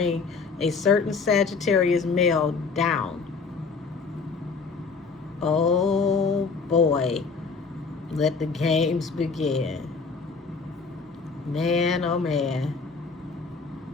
a certain Sagittarius male down. Oh boy, let the games begin. Man, oh man.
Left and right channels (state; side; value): quieter; right; 4.8 dB